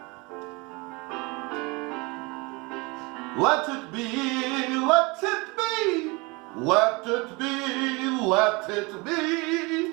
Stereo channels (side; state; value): left; quieter; 26.7 dB